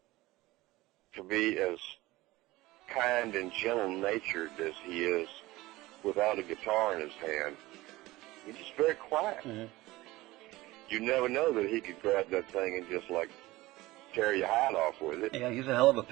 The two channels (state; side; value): quieter; left; 19.0 dB